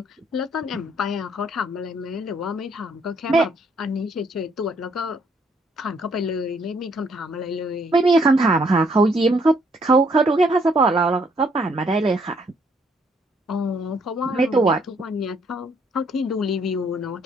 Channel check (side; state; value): both; normal; correlation 0.68